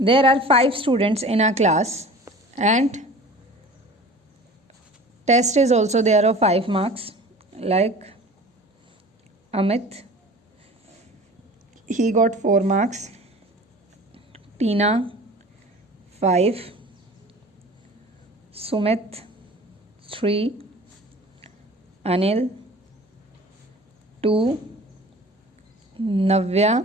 are 5 students in our class and test is also there of 5 marks, like Amit, he got 4 marks, Tina 5, Sumit 3, Anil 2,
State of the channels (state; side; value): normal; both; correlation 0.42